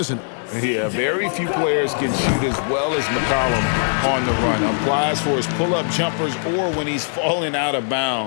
it? Yeah, very few players can shoot as well as McCollum on the run. Applies for his pull-up jumpers or when he's falling out of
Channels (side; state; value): right; silent; digital silence